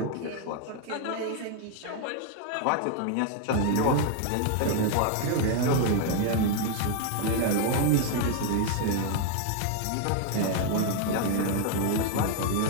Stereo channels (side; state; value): both; different; correlation 0.00